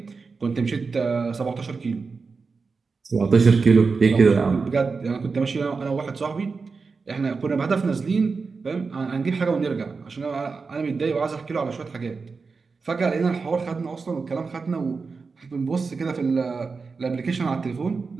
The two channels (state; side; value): quieter; left; 4.6 dB